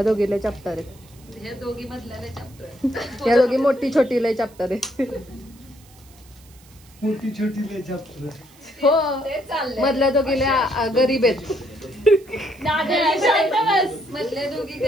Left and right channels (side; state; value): right; noise; hiss, 26 dB below the sound